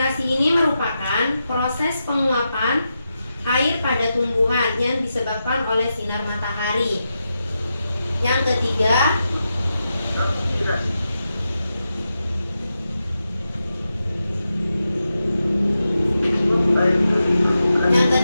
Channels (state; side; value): inverted; both; correlation -0.88